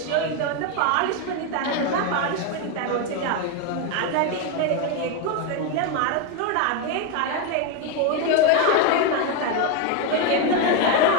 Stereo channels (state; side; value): different; both; correlation 0.02